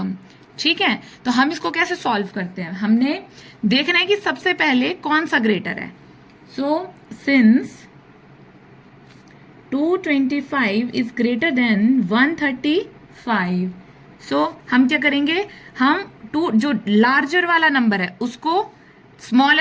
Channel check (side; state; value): both; identical; correlation 1.00